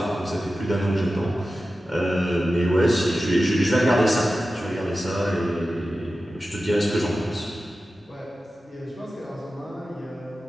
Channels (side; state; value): both; normal; correlation 0.94